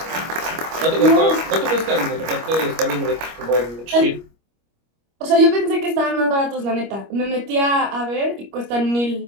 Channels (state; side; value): late; left; 25 ms